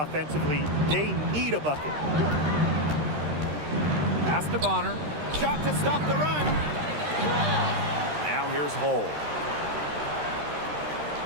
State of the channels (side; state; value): left; late; 13 ms